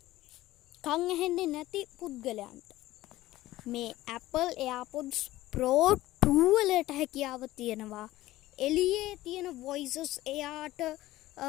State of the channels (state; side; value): quieter; right; 16.4 dB